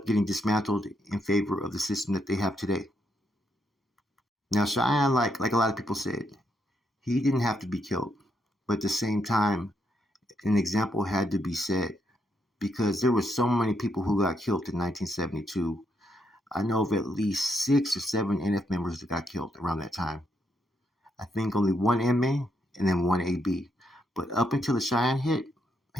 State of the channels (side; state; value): both; normal; correlation 0.78